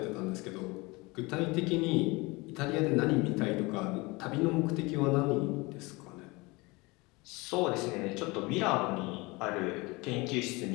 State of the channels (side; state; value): right; quieter; 24.6 dB